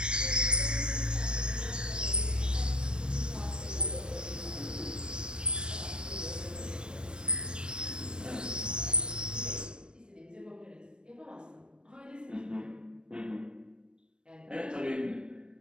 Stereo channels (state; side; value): late; left; 0.054 ms